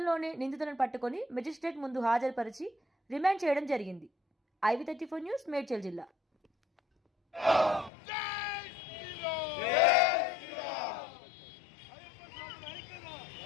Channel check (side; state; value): right; drops out; at 7.9 s